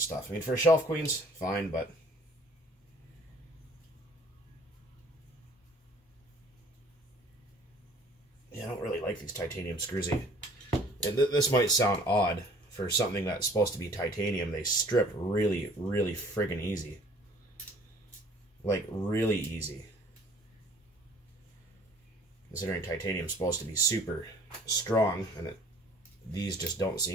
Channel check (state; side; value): normal; both; correlation 0.54